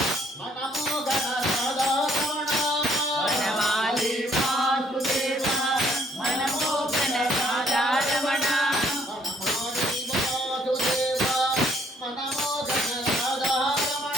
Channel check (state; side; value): normal; both; correlation 0.64